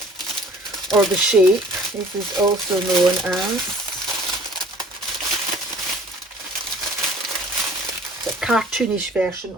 or The Shape, this is also known as. The cartoonish version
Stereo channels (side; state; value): both; normal; correlation 0.51